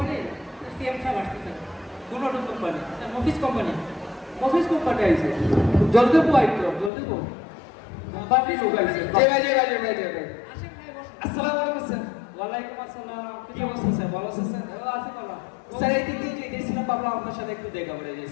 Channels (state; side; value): drops out; right; at 6.9 s